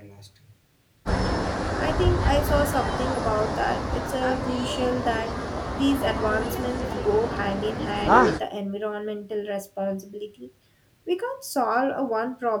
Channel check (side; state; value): both; identical; correlation 1.00